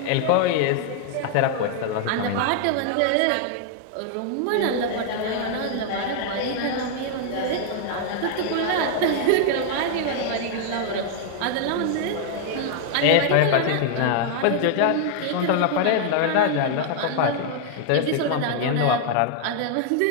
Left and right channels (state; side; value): different; both; correlation 0.00